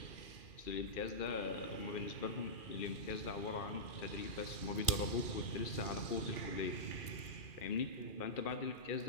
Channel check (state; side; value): late; right; 2.4 ms